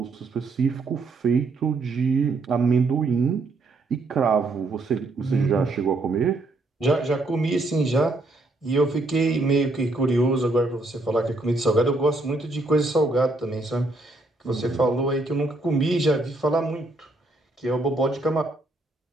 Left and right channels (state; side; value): quieter; left; 3.0 dB